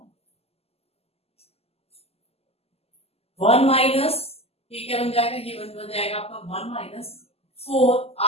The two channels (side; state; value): right; late; 0.29 ms